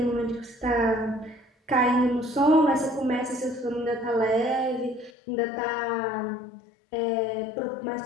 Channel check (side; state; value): right; drops out; at 5.1 s